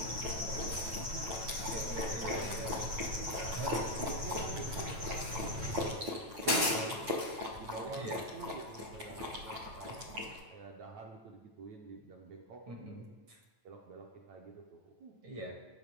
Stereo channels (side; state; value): left; late; 9.1 ms